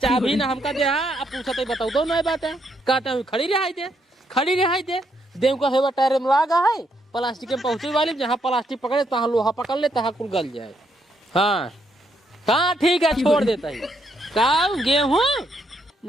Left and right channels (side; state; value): both; normal; correlation 0.75